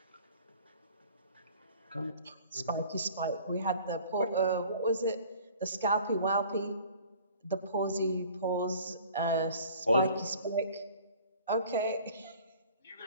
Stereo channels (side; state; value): both; inverted; correlation -0.49